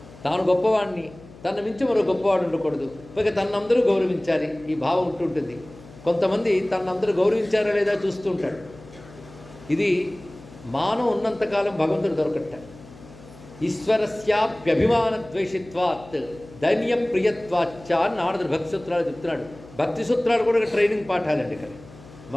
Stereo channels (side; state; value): left; noise; hum, 20 dB below the sound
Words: తాను గొప్పవాడిని, తన మించి మరో గొప్పవాడు ఉండకూడదు, పైగా తనందరూ గౌరవించాలి, ఈ భావం ఉంటుంటుంది. కొంతమంది తనందరూ గౌరవించారా లేదా చూస్తూ ఉంటాడు. ఇది మానం ఉన్నంతకాలం భగవంతుడు దొరకట్ట. ఈశ్వరస్యాప్యభిమాన ద్వేషిత్వాత్ దైన్య ప్రియత్వాచ్చ నారదుడు భక్తి సూత్రాలు చెప్తున్నాడు. భక్తి సూత్రాలు కూడా ట్రైనింగ్ పాఠాలండి. కానీ